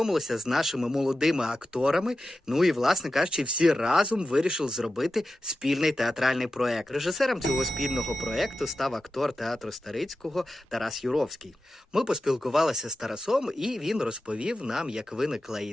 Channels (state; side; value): normal; both; correlation 0.92